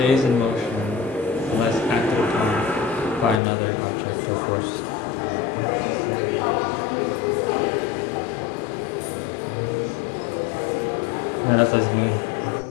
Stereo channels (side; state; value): right; drops out; at 3.4 s